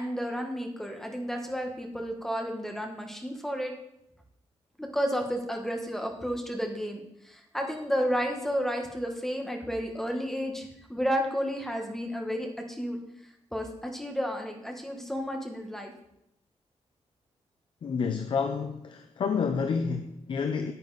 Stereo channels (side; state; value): both; normal; correlation 0.83